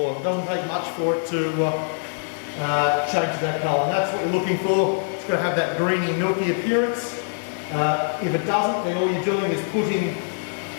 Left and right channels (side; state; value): right; silent; digital silence